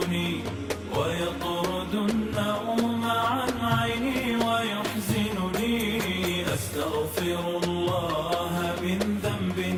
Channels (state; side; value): identical; both; correlation 1.00